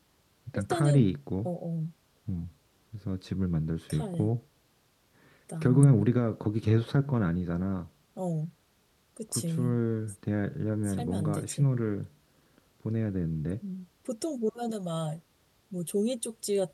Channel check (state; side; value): identical; both; correlation 1.00